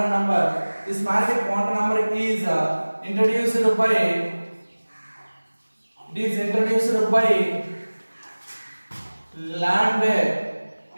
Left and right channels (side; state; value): both; inverted; correlation -1.00